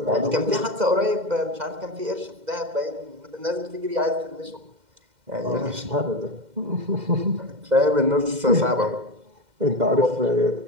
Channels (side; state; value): left; late; 2.1 ms